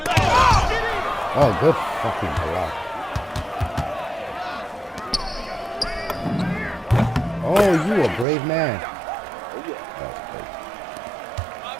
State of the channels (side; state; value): left; drops out; at 8.2 s